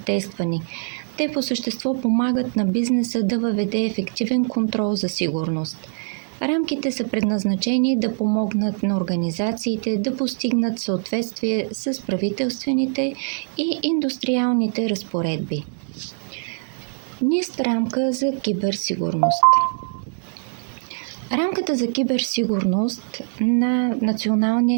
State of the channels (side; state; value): left; silent; 64 dB below the other